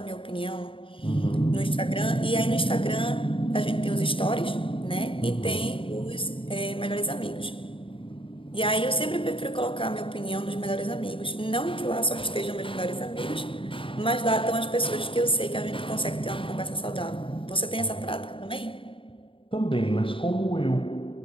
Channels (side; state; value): right; late; 0.25 ms